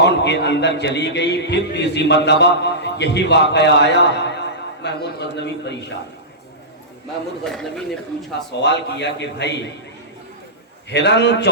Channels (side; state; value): both; normal; correlation -0.17